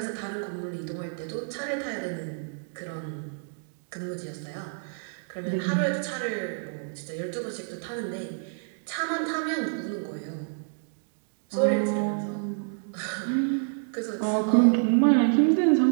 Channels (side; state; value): left; silent; digital silence